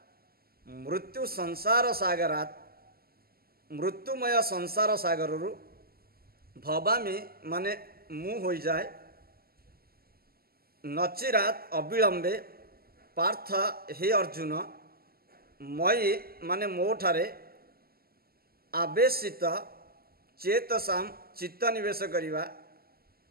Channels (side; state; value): left; late; 0.45 ms